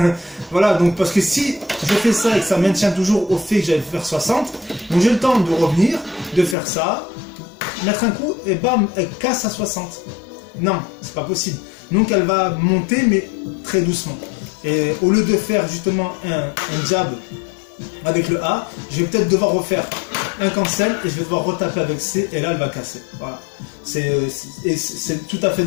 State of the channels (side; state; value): right; drops out; at 6.6 s